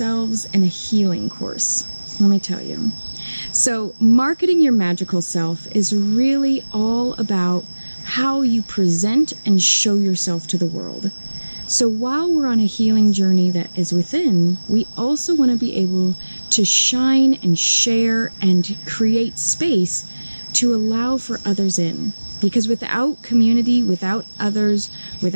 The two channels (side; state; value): both; inverted; correlation -1.00